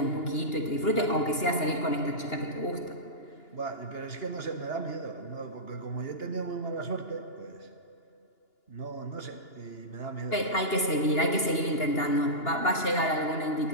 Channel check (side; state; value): right; late; 2.9 ms